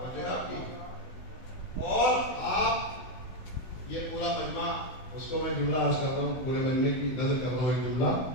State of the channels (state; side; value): late; right; 16 ms